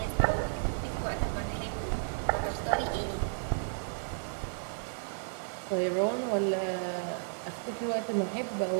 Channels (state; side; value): silent; left; 56 dB below the other